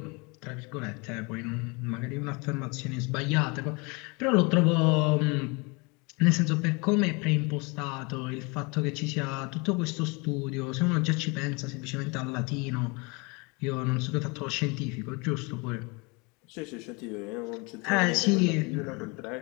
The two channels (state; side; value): quieter; right; 29.1 dB